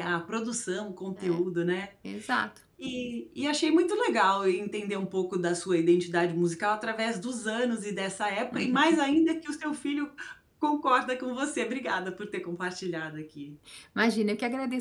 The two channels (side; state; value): both; identical; correlation 1.00